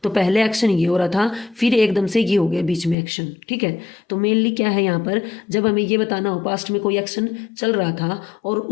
तो पहले एक्शन ये हो रहा था, फिर एकदम से ये हो गया बीच में एक्शन, ठीक है। तो मेनली क्या है यहाँ पर, जब हमें ये बताना हो पास्ट में कोई एक्शन चल रहा था और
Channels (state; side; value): drops out; right; at 3.0 s